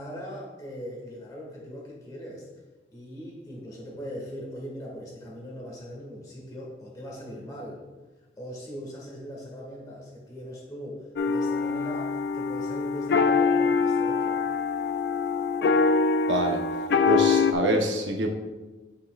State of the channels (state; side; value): quieter; right; 3.4 dB